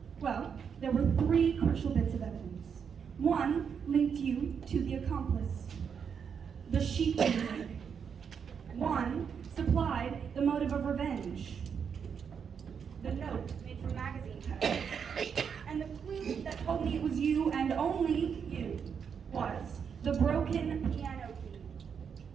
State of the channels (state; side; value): quieter; left; 6.9 dB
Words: Well, there were 3 crucial bits of evidence. One linked you to the accomplice, the sheet music. One supplied the motive of revenge, the note made from magazine covers. And the clue that told me it was you and only you was the broken piano key.